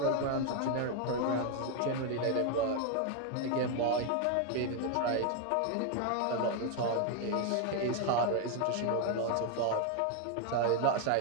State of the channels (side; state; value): both; different; correlation 0.01